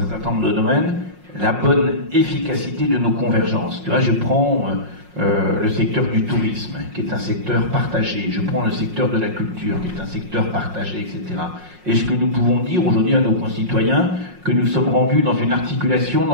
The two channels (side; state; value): left; late; 5.5 ms